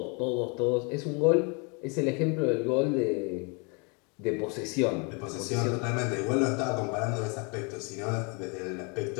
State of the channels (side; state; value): right; quieter; 32.8 dB